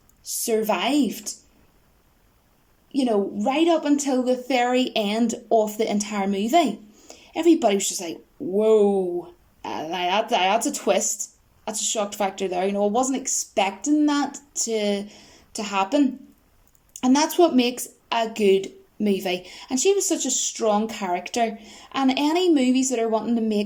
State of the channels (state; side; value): identical; both; correlation 1.00